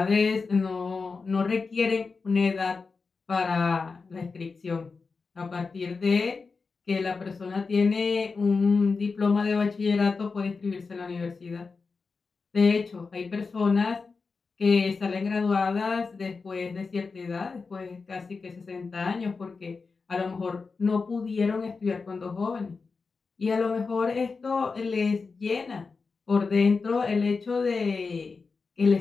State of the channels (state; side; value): quieter; right; 4.5 dB